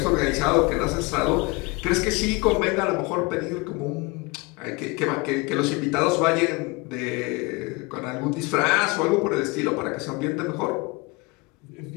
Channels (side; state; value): right; quieter; 25.7 dB